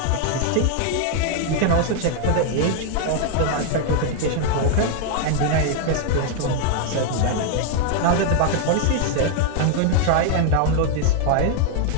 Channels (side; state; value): both; different; correlation 0.00